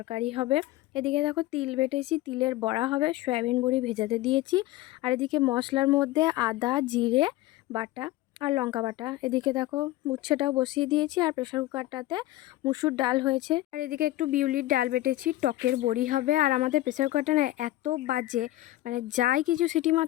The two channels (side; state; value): right; quieter; 16.6 dB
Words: হবে। এদিকে দেখো তিল বেটেছি, তিলের বড়া হবে, সয়াবিন বড়ি ভেজাতে দিয়েছি। আর এদিকে মশলার মধ্যে আদা জিরে বাটা আর লঙ্কা বাটা। এদিকে দেখো উচ্ছেটাও বসিয়ে দিয়েছি, আর প্রেসার কুকারটাতে মুসুর ডাল হয়েছে। আর এদিকে একটু বিউলির ডাল বেটেছি, টকের বড়ি হবে। আর আমাদের প্রেসার কুকারটা না এত বাজে, মানে যাই কিছু সিটি